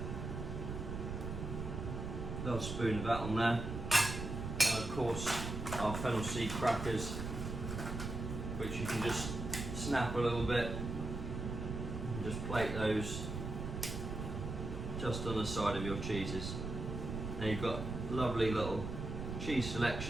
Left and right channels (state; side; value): noise; right; rumble, 5 dB below the sound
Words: Little spoon of that on there. And of course, our fennel seed crackers, which you can just snap a little bit and just plate those just on the side of your cheeses. And you've got lovely little cheese